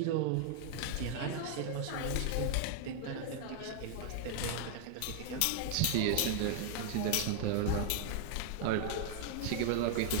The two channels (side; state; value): both; different; correlation 0.00